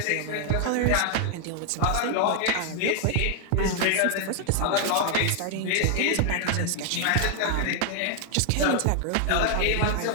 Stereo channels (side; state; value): both; different; correlation 0.00